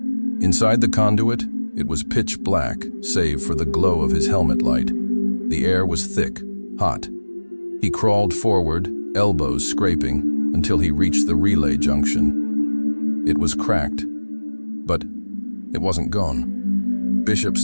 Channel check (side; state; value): both; inverted; correlation -1.00